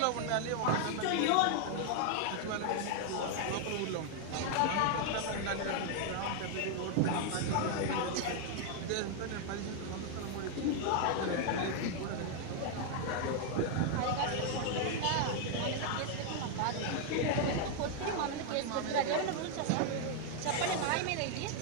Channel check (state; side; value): different; both; correlation 0.00